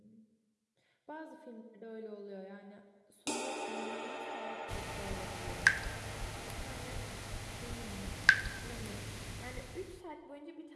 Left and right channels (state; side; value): identical; both; correlation 1.00